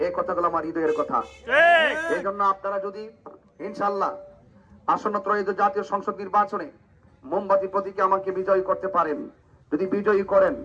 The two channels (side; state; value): both; identical; correlation 1.00